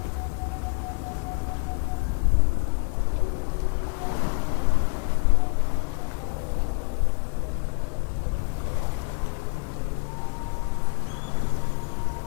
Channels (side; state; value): right; quieter; 38.1 dB